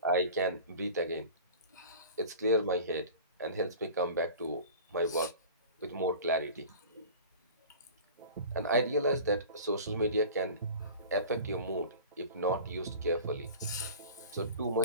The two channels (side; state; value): both; inverted; correlation -0.39